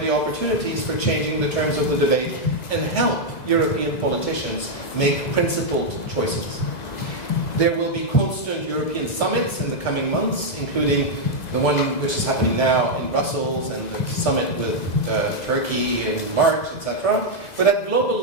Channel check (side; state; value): right; late; 2.0 ms